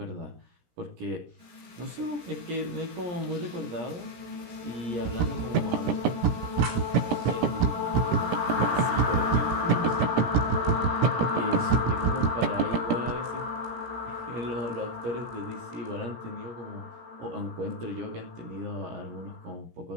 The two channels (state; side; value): late; left; 17 ms